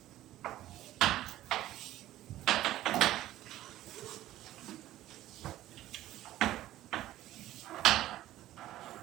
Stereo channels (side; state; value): left; quieter; 14.4 dB